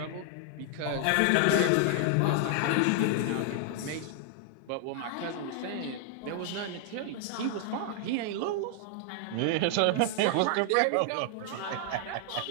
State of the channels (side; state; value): both; different; correlation 0.00